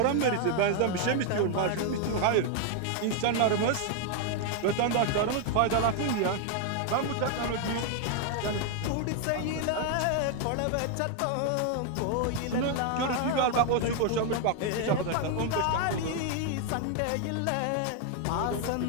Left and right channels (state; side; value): different; both; correlation 0.01